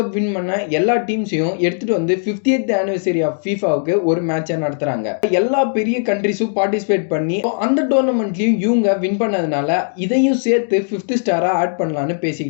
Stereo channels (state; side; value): silent; right; digital silence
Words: வின் பண்ண எல்லா டீம்ஸையும் எடுத்துட்டு வந்து 50th ஆனிவர்சரி ஆஃப் FIFAவுக்கு ஒரு மேட்சை நடத்துறாங்க. எல்லா பெரிய கண்ட்ரிஸும் பார்ட்டிசிபேட் பண்ணி அந்த டோர்னமெண்ட்லயும் இவங்க வின் பண்ணதுனால இதையும் சேர்த்து 5th ஸ்டாரா ஆட் பண்ணலாம்னு